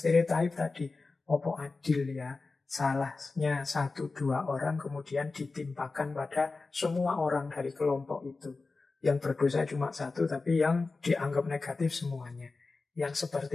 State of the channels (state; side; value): quieter; right; 3.8 dB